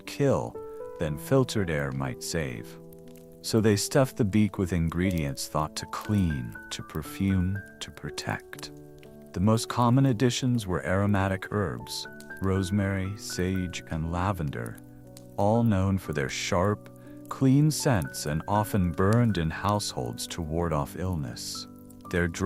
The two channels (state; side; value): identical; both; correlation 1.00